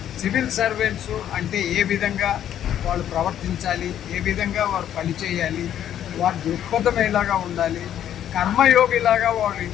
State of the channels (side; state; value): right; quieter; 10.6 dB